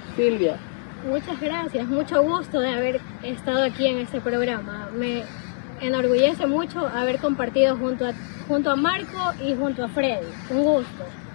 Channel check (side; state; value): right; silent; digital silence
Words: Silvia. Muchas gracias, mucho gusto de haber estado aquí en este programa. Me enorgullece mucho haber compartido junto a Marco y junto a Freddy. Un gusto.